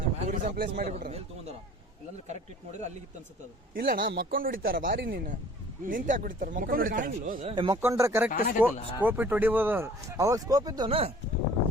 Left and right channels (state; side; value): normal; both; correlation 0.50